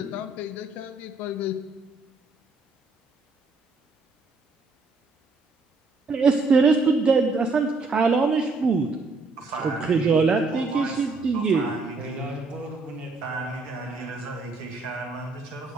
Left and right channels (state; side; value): quieter; left; 3.7 dB